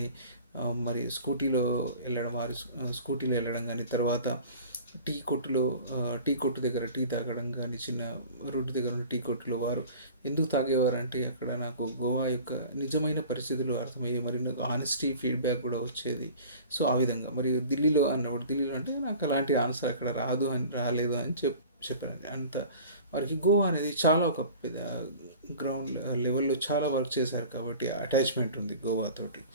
మరి స్కూటీలో వెళ్ళడం కానీ, తర్వాత టీ కొట్టు దగ్గర టీ తాగడం కానీ, చిన్న రోడ్డు దగ్గర ఉన్న టీ కొట్టులో వారు ఎందుకు తాగేవారు అంటే అక్కడ నాకు గోవా యొక్క నిజమైన పరిస్థితులు అర్థమయ్యాయి, మరియు నాకు ఆనెస్టీ ఫీడ్బ్యాక్ కూడా వచ్చేది. సో ఆ విధంగా. మరియు ఢిల్లీలో అంటే నాకు అలాంటి ఆన్సర్ అక్కడ రాలేదు అని చెప్పాను. అంత వారికి గోవా అనేది చాలా ఒక పెద్ద గ్రౌండ్ లెవెల్లో చాలా వర్క్ చేశారు కాబట్టి అటాచ్మెంట్ ఉంది గోవా తోటి.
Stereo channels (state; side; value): inverted; both; correlation -0.42